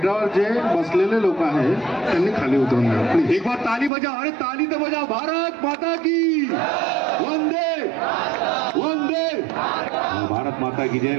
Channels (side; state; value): left; drops out; at 3.9 s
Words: जे बसलेले लोक आहेत त्यांनी खाली उतरून जा प्लीज. एक बार ताली बजाओ, अरे ताली तो बजाओ. भारत माता की वंदे वंदे. भारत माता की जय,